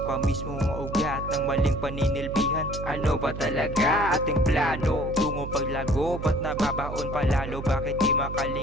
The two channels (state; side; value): noise; right; hum, 7 dB below the sound